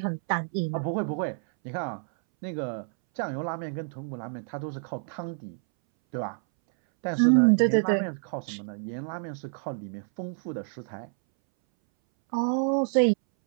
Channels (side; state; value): left; silent; 59 dB below the other